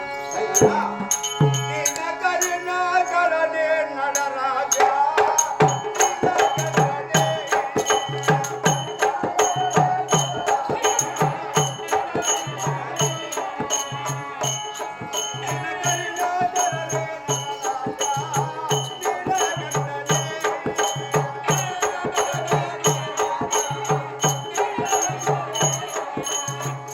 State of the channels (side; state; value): both; identical; correlation 1.00